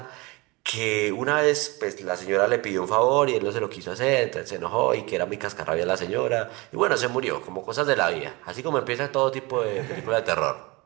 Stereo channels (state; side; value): quieter; left; 24.7 dB